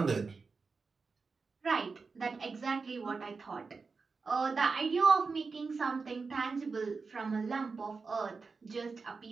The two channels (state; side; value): quieter; left; 4.6 dB